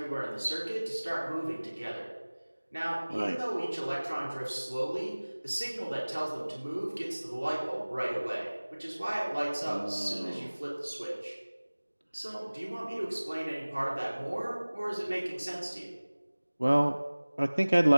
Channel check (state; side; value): inverted; both; correlation -1.00